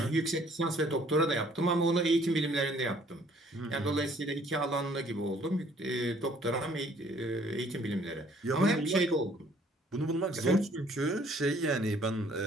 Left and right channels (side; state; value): both; normal; correlation 0.60